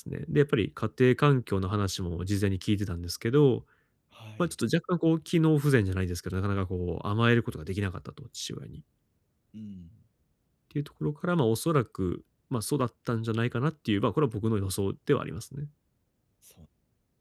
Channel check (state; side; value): identical; both; correlation 1.00